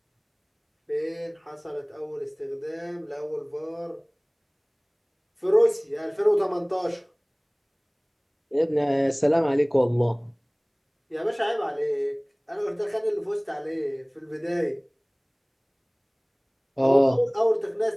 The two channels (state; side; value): identical; both; correlation 1.00